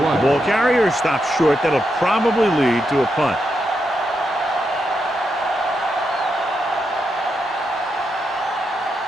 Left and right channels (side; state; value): both; normal; correlation 0.83